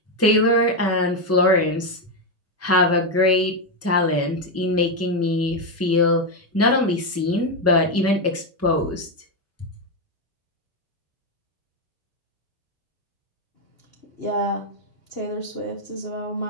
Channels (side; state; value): both; normal; correlation 0.06